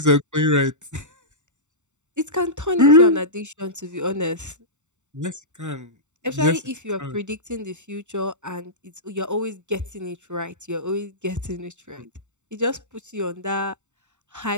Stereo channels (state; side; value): late; left; 0.84 ms